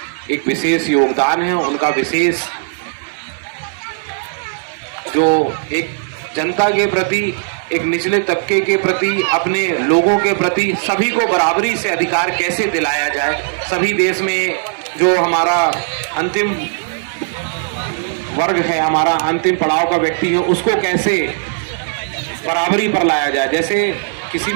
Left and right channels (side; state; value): left; silent; digital silence